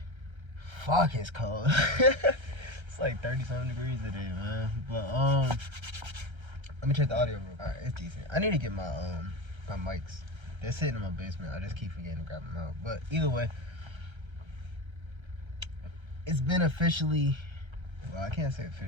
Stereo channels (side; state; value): left; late; 1.3 ms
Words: Fuck, it's cold. It's like 30-something degrees today, man. But, let me check the audio real quick. Alright, it's decent. I need to get my mics. They're sitting in my basement. I just keep forgetting to grab them out. But either way, it's been officially, well, I can't say